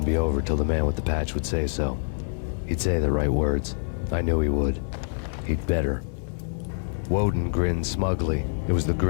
be over till the man with the patch would say so. He'd say the right words. I knew he would. He'd better. Woden grinned smugly. It was the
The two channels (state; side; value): silent; right; digital silence